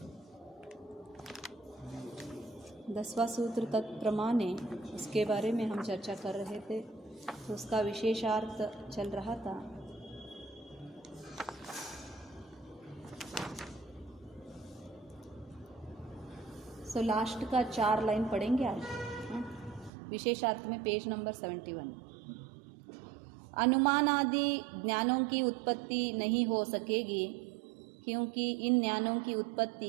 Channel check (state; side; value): drops out; left; at 19.9 s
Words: 10वां सूत्र तत्प्रमाणे, उसके बारे में हम चर्चा कर रहे थे, तो उसका विशेषार्थ चल रहा था। सो लास्ट का 4 लाइन पढ़ेंगे आज। विशेषार्थ में पेज नंबर 71। अनुमान आदि ज्ञानों की उत्पत्ति नहीं हो सकेगी, क्योंकि इन ज्ञानों की